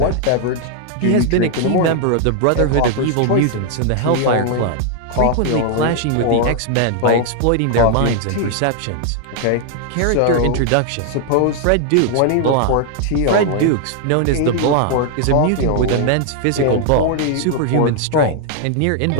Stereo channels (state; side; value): different; both; correlation 0.00